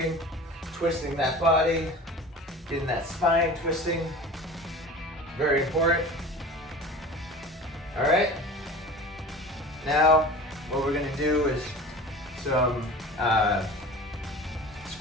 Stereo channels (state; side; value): normal; both; correlation 0.37